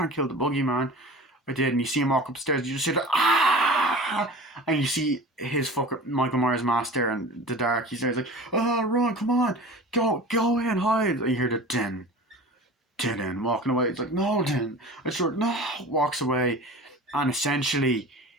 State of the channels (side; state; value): both; normal; correlation 0.37